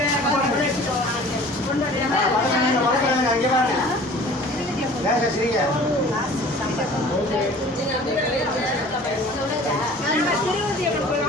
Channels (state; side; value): normal; both; correlation 0.46